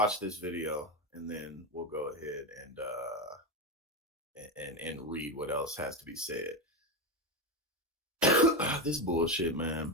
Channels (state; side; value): normal; both; correlation 0.13